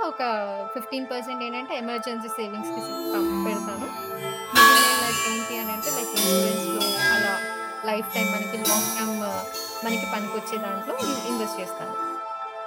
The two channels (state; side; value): identical; both; correlation 1.00